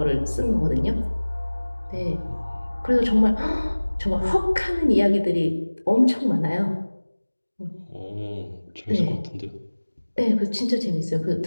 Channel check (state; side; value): inverted; both; correlation -1.00